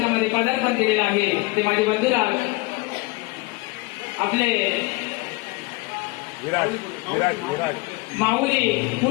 पदार्पण केलेलं आहे ते माझे बंधुराज आपले विराज माऊली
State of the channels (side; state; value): right; quieter; 23.3 dB